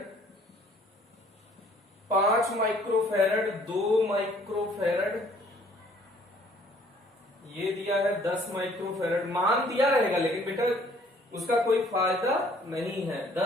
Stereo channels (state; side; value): normal; both; correlation 0.59